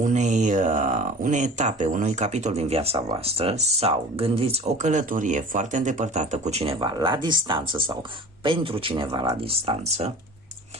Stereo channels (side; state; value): both; normal; correlation 0.41